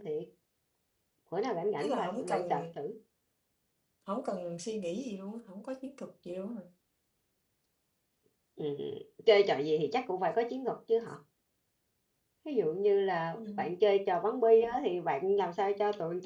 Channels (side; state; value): both; identical; correlation 1.00